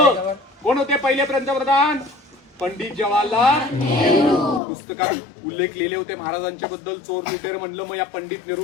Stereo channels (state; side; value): drops out; right; at 4.6 s